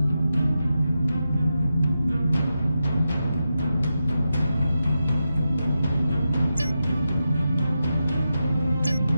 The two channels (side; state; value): both; inverted; correlation -0.89